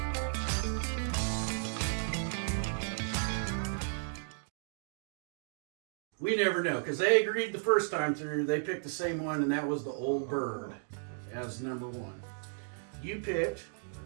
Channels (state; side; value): silent; left; digital silence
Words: We never know, because they agreed the first time through, they picked the same one, and that was the Old Bird as number one. You picked